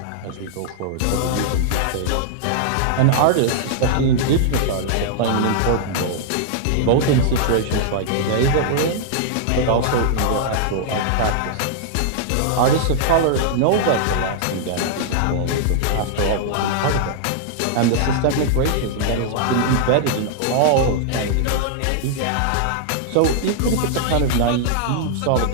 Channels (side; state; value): both; different; correlation -0.01